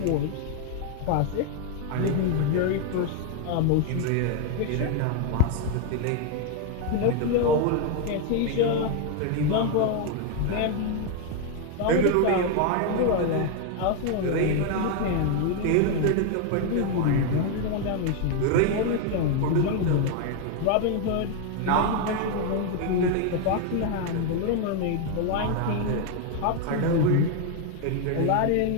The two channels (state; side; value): different; both; correlation 0.01